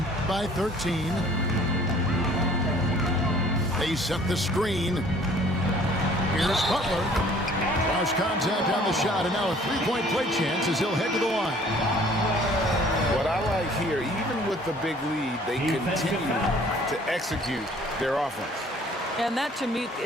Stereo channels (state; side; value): normal; both; correlation 0.55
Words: by 13. They set the screen. Here's Butler. Cross contact on the shot, and now a three-point play chance as he'll head to the line. What I like here, even with the big lead, they continue to execute their offense. And that, to me,